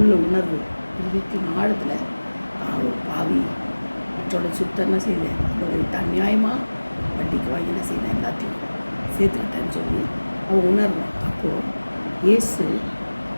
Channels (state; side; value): inverted; both; correlation -1.00